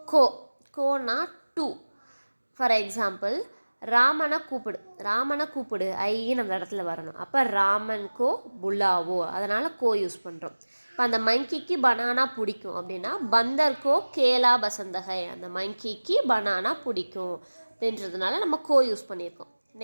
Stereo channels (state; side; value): inverted; both; correlation -1.00